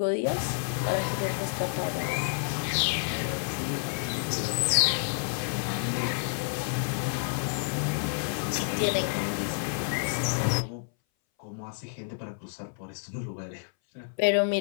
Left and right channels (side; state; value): right; silent; 58 dB below the other